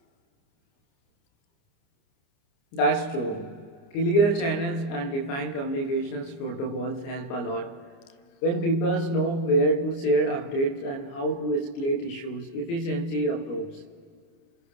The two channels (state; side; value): late; right; 29 ms